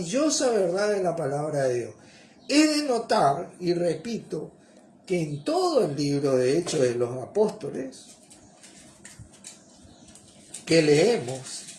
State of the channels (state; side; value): identical; both; correlation 1.00